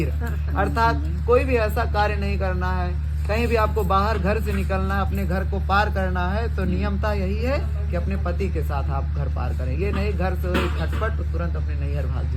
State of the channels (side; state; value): both; identical; correlation 1.00